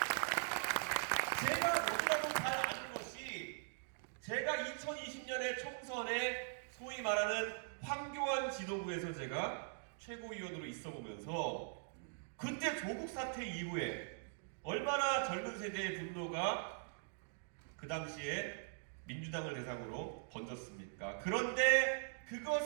제가 최고위원으로 있어 보면서 그때 조국 사태 이후에 얼마나 젊은 세대의 분노가 그 당시에 민주당을 대상으로 번졌습니까? 그런데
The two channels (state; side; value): silent; left; digital silence